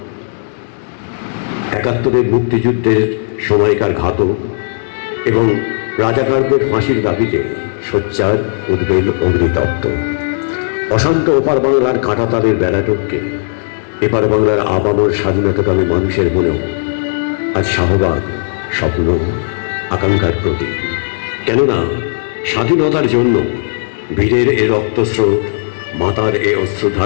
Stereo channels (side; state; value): right; silent; digital silence